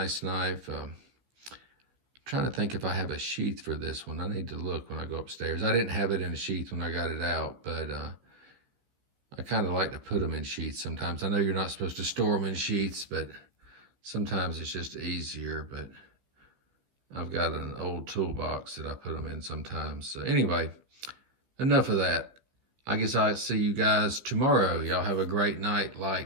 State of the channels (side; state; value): left; late; 15 ms